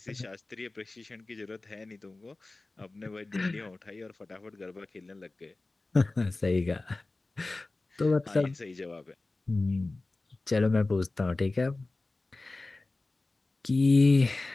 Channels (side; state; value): right; quieter; 3.2 dB